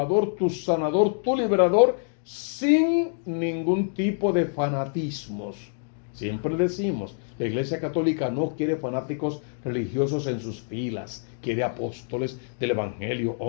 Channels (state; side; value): silent; right; digital silence